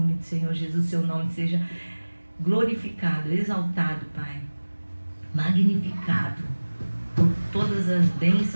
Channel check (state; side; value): inverted; both; correlation -1.00